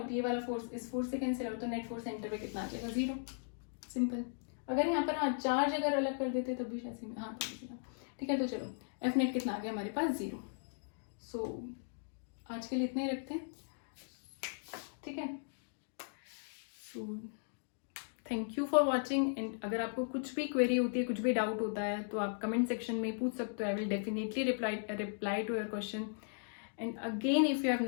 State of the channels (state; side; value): silent; right; digital silence